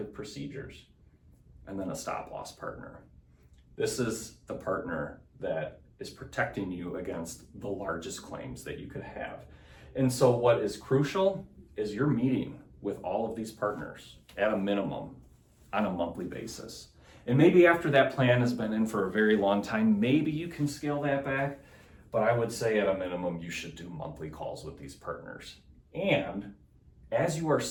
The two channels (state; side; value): identical; both; correlation 1.00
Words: procedures. And then a stop-loss partner. This is the partner that is protecting you against the largest claims that you could have. And so what is crucial is you're meeting with all of these partners at a minimum on a monthly basis. And maybe after that plan has been in for a very long time, maybe you can scale that back. But I would say at a minimum, you should do monthly calls with these partners. And as you are